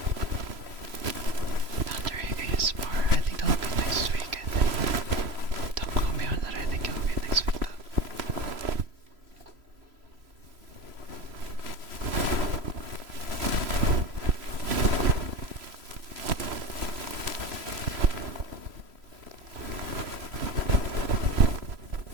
Thundering ASMR. I think that'll be next week, I think. Don't quote me on that, I think it'll be next week though.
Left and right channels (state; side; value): late; left; 3.0 ms